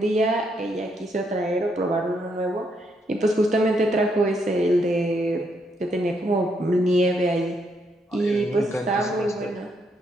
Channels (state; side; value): normal; both; correlation 0.76